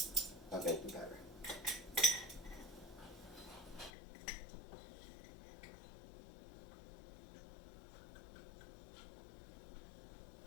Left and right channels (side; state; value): right; drops out; at 3.9 s